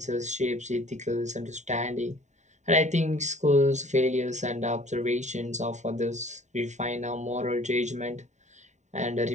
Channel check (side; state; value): left; late; 0.34 ms